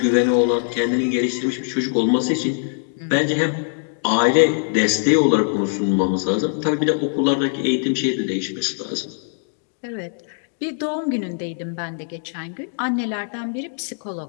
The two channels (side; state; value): right; silent; digital silence